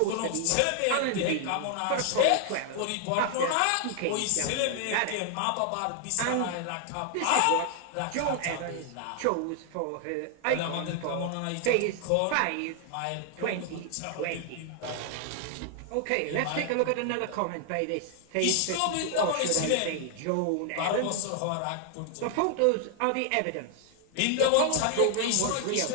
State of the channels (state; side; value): different; both; correlation 0.00